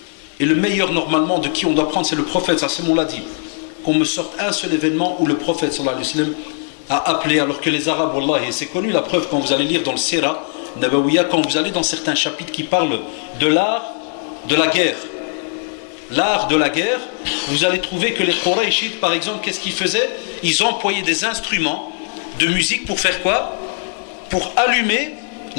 et le meilleur normalement de qui on doit prendre c'est le prophète, ça c'est mon l'a dit, qu'on me sorte un seul événement où le prophète sallallahu alayhi wa sallam a appelé, alors que les Arabes, wallah, et c'est connu la preuve quand vous allez lire dans le Sira Nabawiya, quand vous allez dans certains chapitres qui parlent de l'art de la guerre, l'art de la guerre, vous allez trouver que les Qurayshites par exemple, qu'est-ce qu'ils faisaient? Ils employaient des instruments de musique pour faire quoi? Pour allumer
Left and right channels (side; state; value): right; silent; 57 dB below the other